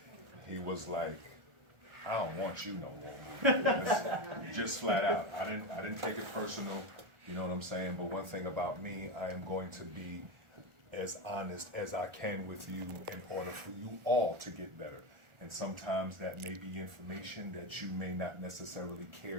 He was like, I don't want you no more. Just flat out. I didn't take it personal, you know what I'm saying? But one thing about me, I am going to be as honest as I can with you in order for you all to get better. And sometimes that may be information that you may not necessarily care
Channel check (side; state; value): left; late; 1.4 ms